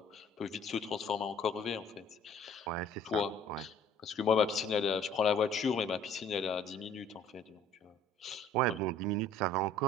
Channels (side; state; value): both; normal; correlation 0.53